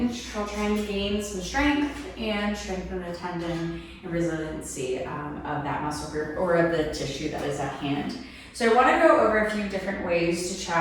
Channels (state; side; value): identical; both; correlation 1.00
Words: while trying to gain some strength and strengthen the tendon and resiliency of that muscle group or of the tissue that is at hand. So I want to go over a few different ways to